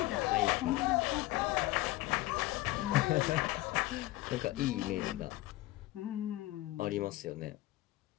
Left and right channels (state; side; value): quieter; right; 17.8 dB